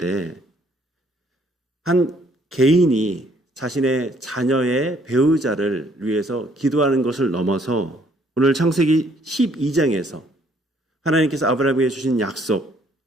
한 개인이 자신의 자녀의 배우자를 위해서 기도하는 것을 넘어서 오늘 창세기 12장에서 하나님께서 아브라함에게 주신 약속,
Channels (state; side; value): normal; both; correlation 0.64